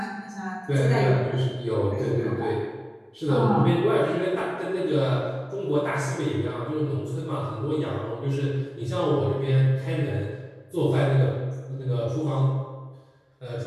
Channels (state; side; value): identical; both; correlation 1.00